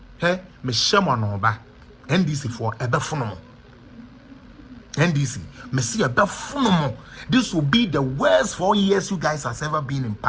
He me shemo no ba. NDC for ebefono. NDC, Messi ebefono. This will be the worst 4 years you guys has ever been in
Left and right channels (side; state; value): both; identical; correlation 1.00